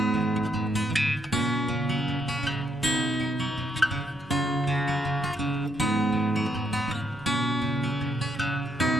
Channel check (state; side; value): normal; both; correlation 0.76